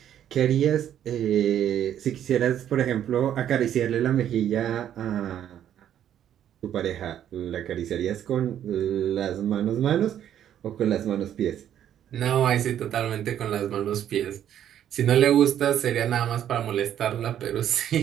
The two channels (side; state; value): left; quieter; 10.4 dB